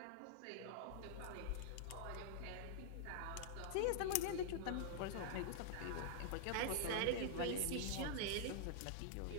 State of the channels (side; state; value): both; different; correlation -0.01